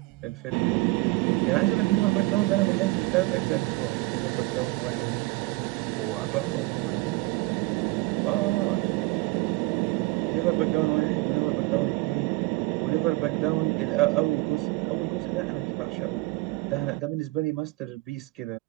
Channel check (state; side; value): quieter; left; 22.1 dB